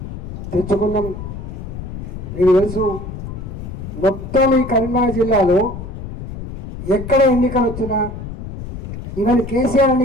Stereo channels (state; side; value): noise; left; rumble, 9 dB below the sound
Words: తెచ్చుకున్నాం, మీకు తెలుసు. మొత్తం ఈ కరీంనగర్ జిల్లాలో ఎక్కడ ఎన్నికలు వచ్చినా, ఈవెన్ కేసీఆర్